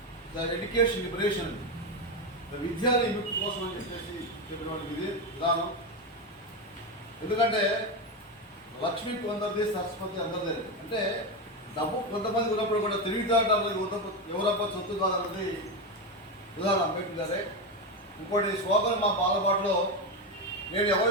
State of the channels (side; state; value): both; normal; correlation 0.13